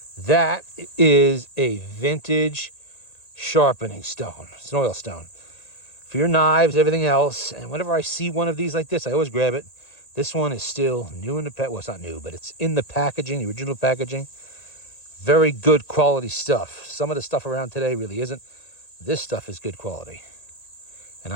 That is a vintage sharpening stone. It's an oil stone. For your knives, everything else. And whenever I see one of these like this, I always grab it. This one is still new in the well, it's not new, but it's in the packaging, the original packaging. Very good quality stuff. Some of the stuff around today really isn't. This stuff is good quality. And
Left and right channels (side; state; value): right; late; 1.8 ms